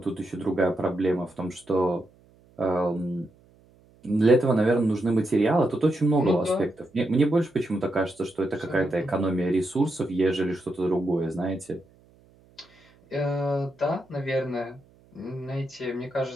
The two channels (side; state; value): right; noise; hum, 30 dB below the sound